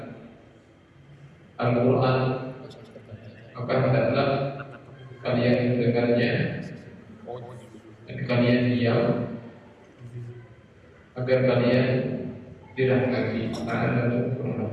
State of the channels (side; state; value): both; identical; correlation 1.00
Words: Al-Quran, maka hendaklah kalian mendengarnya dan kalian diam, agar kalian dirahmati.